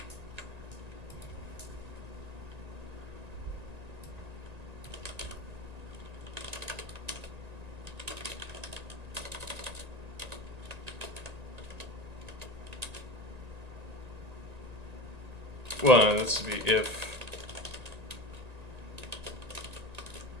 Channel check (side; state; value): left; late; 1.9 ms